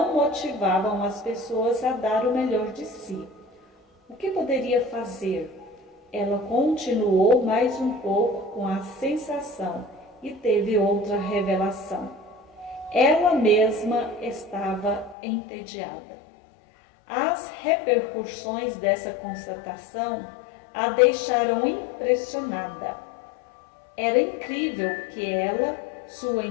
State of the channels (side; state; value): right; drops out; at 15.2 s